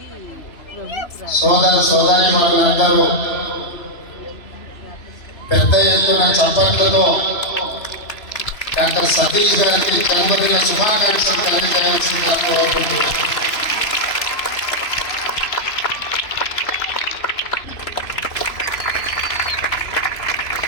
సోదరి వాళ్ళందరూ పెద్ద ఎత్తున చప్పట్లతో డాక్టర్ సతీష్ గారికి జన్మదిన శుభాకాంక్షలు తెలియజేయాల్సిందిగా కోరుకుంటున్నాను.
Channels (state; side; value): late; right; 3.0 ms